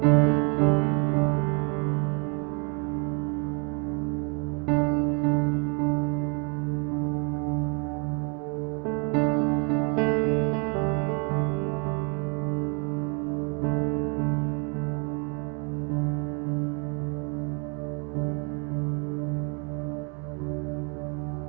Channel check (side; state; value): left; quieter; 36.1 dB